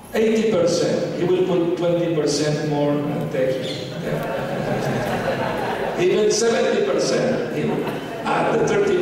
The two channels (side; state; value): both; identical; correlation 1.00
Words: 80%, he will put 20% more and take it. Even 70%, he will add the